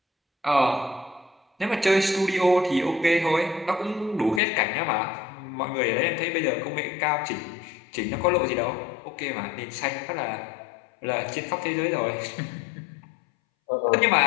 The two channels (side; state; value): right; drops out; at 4.4 s